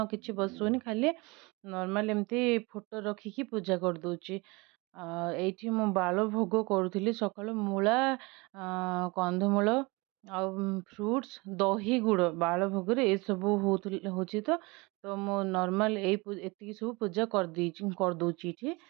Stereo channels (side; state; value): left; quieter; 25.6 dB